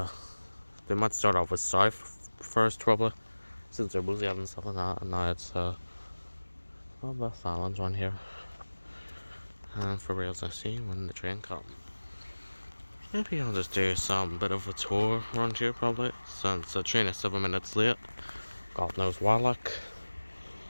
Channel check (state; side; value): inverted; both; correlation -1.00